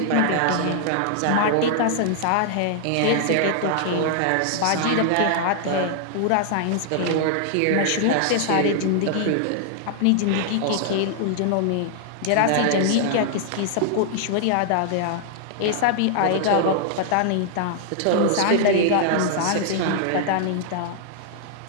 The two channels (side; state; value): both; different; correlation -0.01